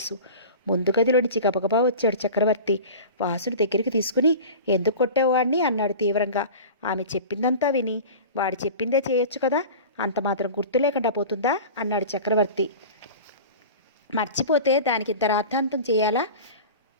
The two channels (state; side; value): inverted; both; correlation -0.34